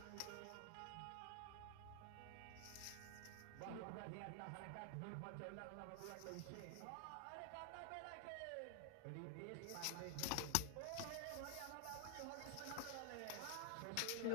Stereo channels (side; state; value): both; different; correlation 0.00